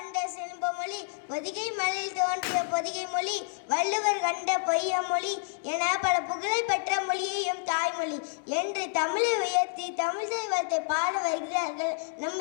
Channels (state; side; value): silent; right; digital silence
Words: செல்வமொழி பொதிகை மலையில் தோன்றிய பொதிகை மொழி வள்ளுவர் கண்ட பொய்யமொழி என பல புகழ் பெற்ற மொழியையும் தாய்மொழி என்று தமிழை உயர்த்தி தமிழ் தெய்வத்தை பாட வருகிறார்கள் நம்